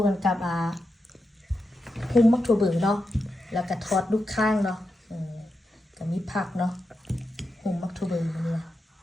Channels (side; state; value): both; normal; correlation 0.88